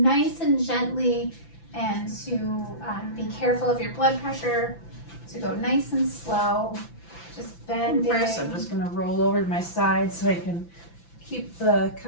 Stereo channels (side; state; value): right; late; 5.9 ms